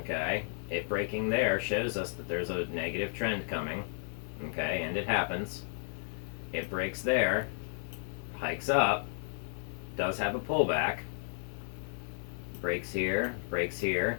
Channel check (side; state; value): right; silent; digital silence